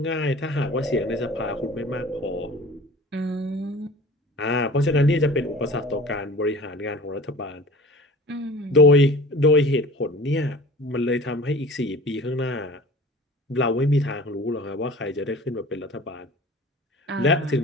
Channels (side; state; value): both; normal; correlation 0.42